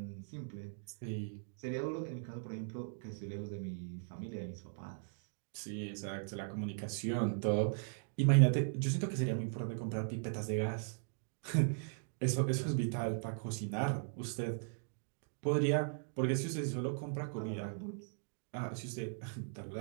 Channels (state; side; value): silent; left; digital silence